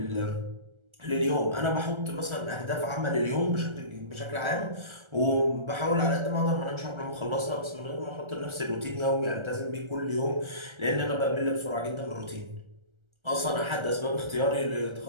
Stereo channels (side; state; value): left; late; 1.3 ms